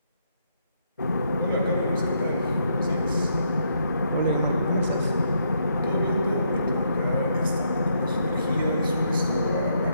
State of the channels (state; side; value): inverted; both; correlation -0.76